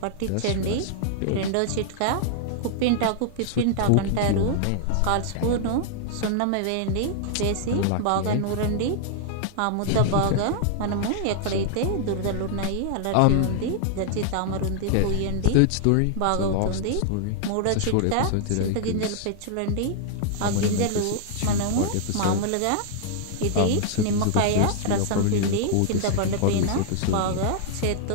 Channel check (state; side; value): different; both; correlation -0.01